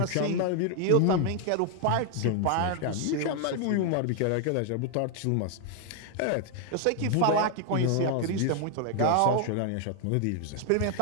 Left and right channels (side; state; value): both; different; correlation 0.00